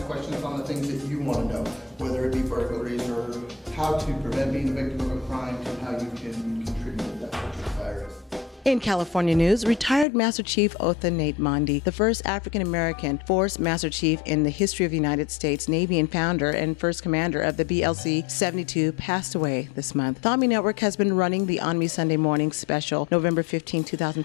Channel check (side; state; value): right; drops out; at 10.1 s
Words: questions on the things that you want to know, whether it be burglaries or how to prevent being a victim of a crime to how you can contribute to that virus. In California news, retired Master Chief Otha Nate Mondi, the first African-American Force Master Chief in the history of the United States Navy and founder and first commander of the BLC-72, passed away this month. The ONME Network has been running the ONME Sunday Morning Special, November 15,